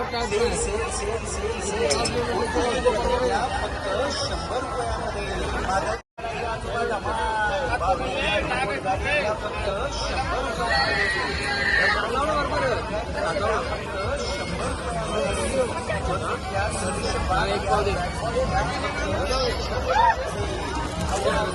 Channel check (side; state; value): both; identical; correlation 1.00